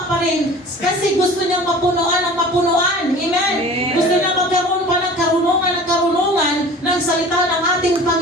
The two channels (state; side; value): normal; both; correlation 0.42